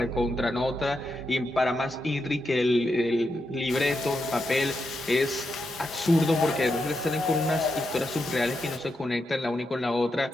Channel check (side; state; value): both; normal; correlation 0.85